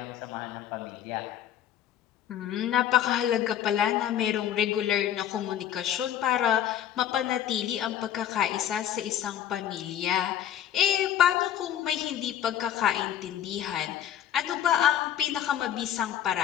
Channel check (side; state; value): right; quieter; 10.6 dB